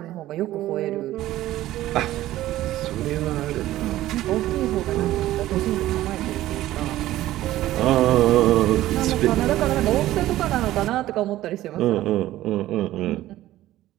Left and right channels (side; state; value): left; quieter; 14.9 dB